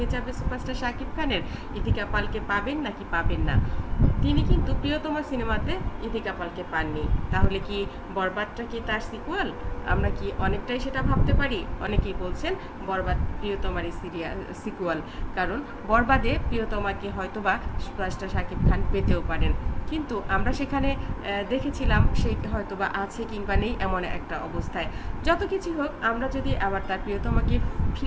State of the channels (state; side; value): identical; both; correlation 1.00